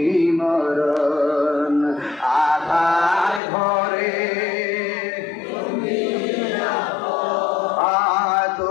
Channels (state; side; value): drops out; right; at 3.4 s